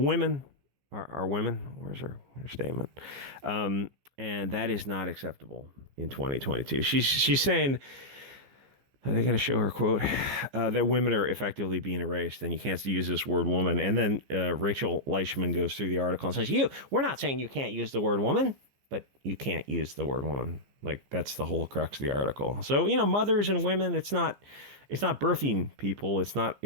are women. Where's her statement? And that is not acceptable in 2022. She's saying, are they going to show her quote? That women are effectively being erased, and you can't use this word woman. And then Rachel Leishman goes through the article and says, we're not saying you can't use the word woman. but you can't use the word woman. Like, that's the whole crux of the article. So, mothers and women, it's not birthing people. It's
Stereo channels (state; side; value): late; left; 15 ms